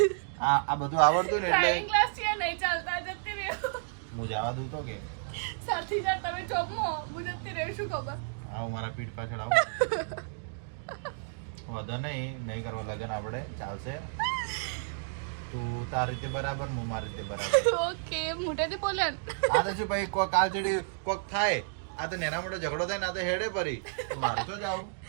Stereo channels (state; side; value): silent; left; digital silence